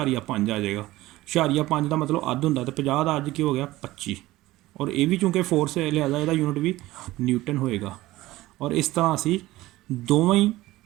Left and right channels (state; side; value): quieter; left; 17.6 dB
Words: आ जाएगा। 0.5 का मतलब अद्ध होंगे, तो 50 का अज की हो गया 25 और ये भी चूँकि फोर्स है लिहाजा इसका यूनिट भी न्यूटन होएगा। और इस तरह असी दोवें ही